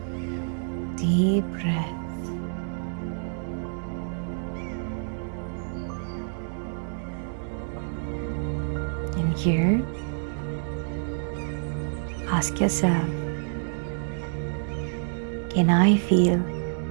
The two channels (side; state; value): left; silent; digital silence